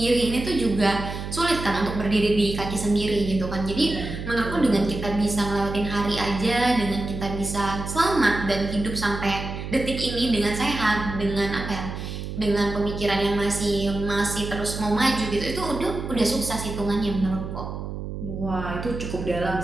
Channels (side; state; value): right; noise; hum, 7 dB below the sound